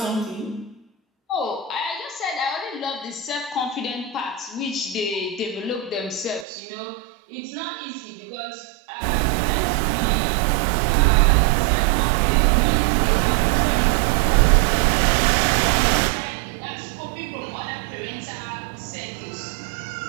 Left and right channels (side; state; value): left; drops out; at 6.5 s